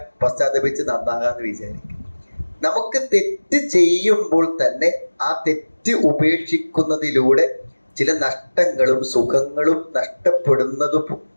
പശ്ചാത്തപിച്ച് നന്നാകാന്ന് വിചാരിക്കും. നമുക്ക് തെറ്റ് ചെയ്യുമ്പോൾ തന്നെ ആ തെറ്റ് ഉപേക്ഷിക്കുന്നതിലൂടെ ചില നഷ്ടങ്ങളും സുഖങ്ങളും നഷ്ടപ്പെടുന്നതും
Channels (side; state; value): both; inverted; correlation -1.00